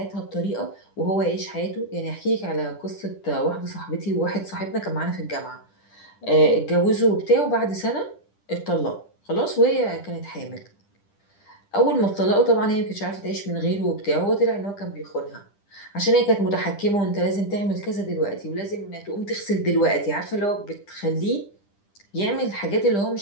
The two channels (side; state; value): right; late; 10 ms